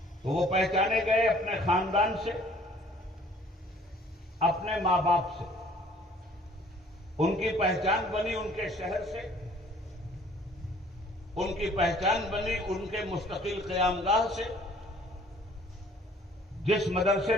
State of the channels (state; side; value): normal; both; correlation 0.55